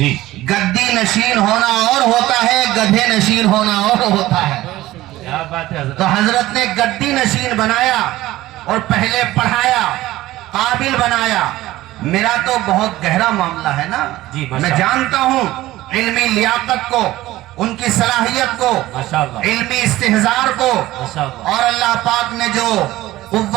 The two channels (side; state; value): left; quieter; 16.5 dB